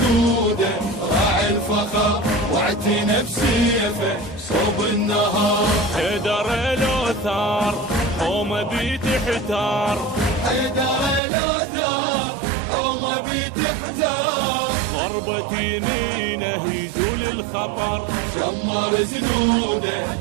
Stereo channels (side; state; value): left; drops out; at 11.2 s